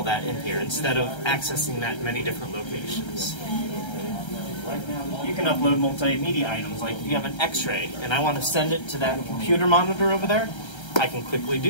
that in here instead of accessing that in many different locations. You can upload multimedia items, like if you have an x-ray and I want to send it to that computer monitor over there, I can quickly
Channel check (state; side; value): late; right; 1.3 ms